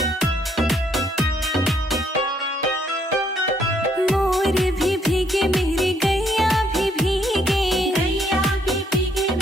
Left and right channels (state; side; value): normal; both; correlation 0.69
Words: मोर भी भीगे, मेरी गैया भी भीगे, गैया भी भीगे,